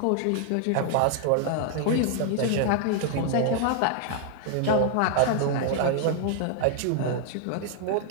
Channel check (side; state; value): both; different; correlation 0.00